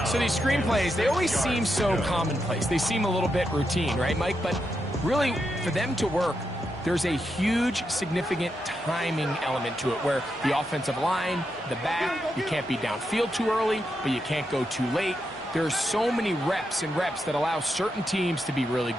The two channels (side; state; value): both; normal; correlation 0.84